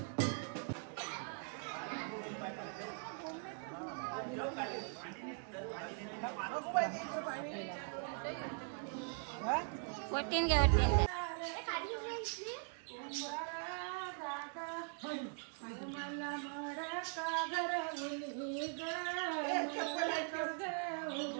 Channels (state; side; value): silent; left; 50 dB below the other